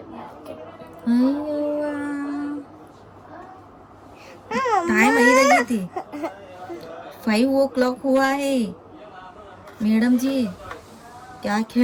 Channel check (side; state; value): both; identical; correlation 1.00